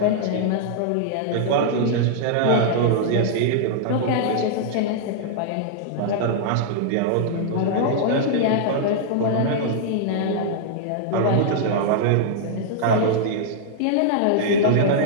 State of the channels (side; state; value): both; different; correlation -0.01